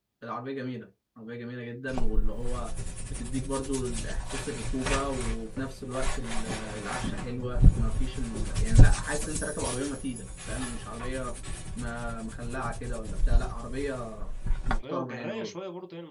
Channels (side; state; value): both; identical; correlation 1.00